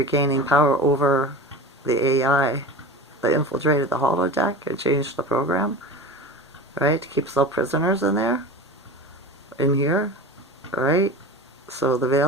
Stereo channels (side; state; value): both; normal; correlation 0.32